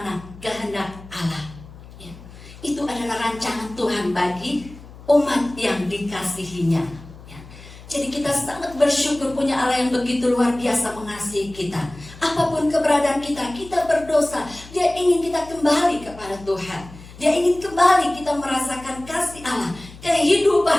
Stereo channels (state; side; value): noise; left; hum, 18 dB below the sound